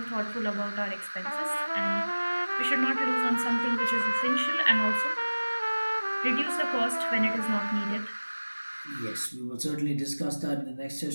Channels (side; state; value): both; inverted; correlation -1.00